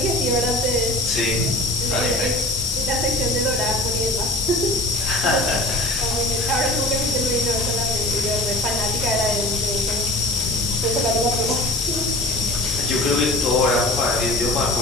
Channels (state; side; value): noise; left; hiss, 3 dB below the sound